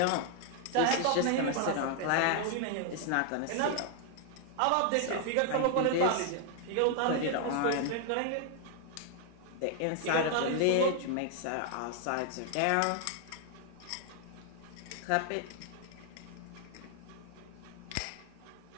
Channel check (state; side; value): different; both; correlation 0.00